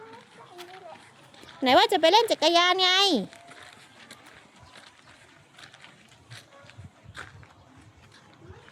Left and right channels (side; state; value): both; identical; correlation 1.00